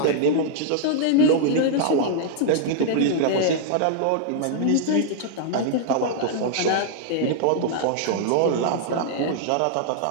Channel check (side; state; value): both; different; correlation -0.01